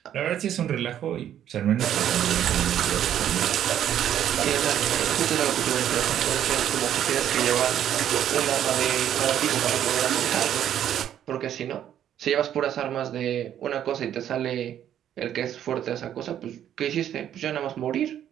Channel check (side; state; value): left; quieter; 10.5 dB